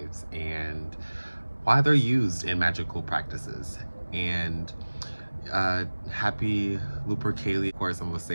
and why they're used in magical practices. And happy Lupercalia. Of course, I'm going to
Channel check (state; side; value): inverted; both; correlation -1.00